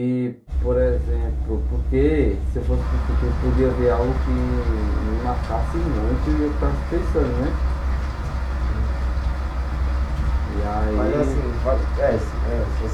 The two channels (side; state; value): both; identical; correlation 1.00